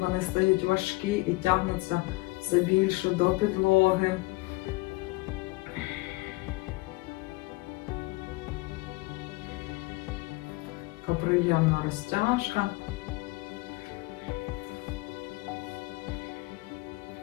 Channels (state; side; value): quieter; right; 23.0 dB